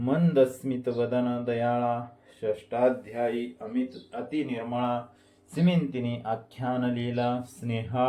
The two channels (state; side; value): identical; both; correlation 1.00